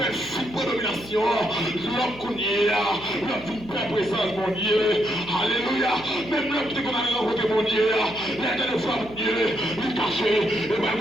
il prend domination. L'homme qu'on y est, l'homme d'une paix présence, mon Dieu. Alléluia. Même l'homme qui est qu'on a rencontré, mon Dieu. L'un de fois, mon Dieu, il est caché. Et ben,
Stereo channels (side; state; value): right; noise; hum, 18 dB below the sound